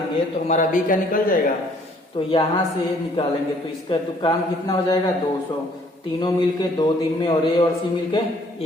तो हमारा B का निकल जाएगा। तो यहां से निकालेंगे तो इसका तो काम कितना हो जाएगा, 200, तीनों मिलके 2 दिन में और A और C मिलके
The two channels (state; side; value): normal; both; correlation 0.61